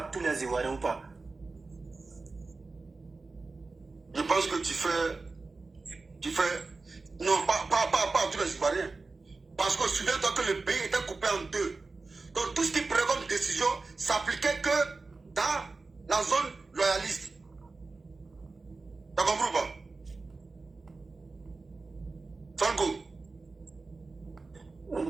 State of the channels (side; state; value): left; quieter; 3.8 dB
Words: tous les Ivoiriens ou pas? Je pense que tu fais, non, pas à tous les Ivoiriens. Parce que souviens-toi que le pays était coupé en deux. Donc tout ce qui prenait comme décision s'appliquait que dans la zone loyaliste. T'as compris ou pas? Franco.